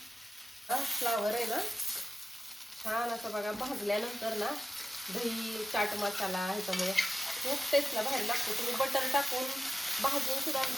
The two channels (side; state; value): both; normal; correlation 0.93